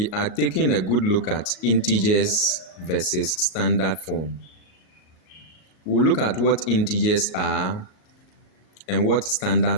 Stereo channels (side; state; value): right; late; 38 ms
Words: are taking a good look at integers versus standard form. We'll look at what integers are and what standard